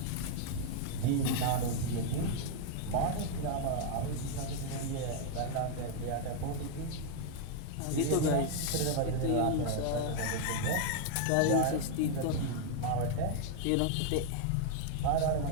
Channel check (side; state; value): both; different; correlation 0.00